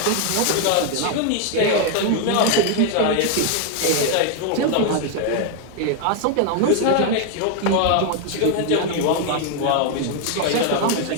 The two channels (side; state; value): both; different; correlation 0.00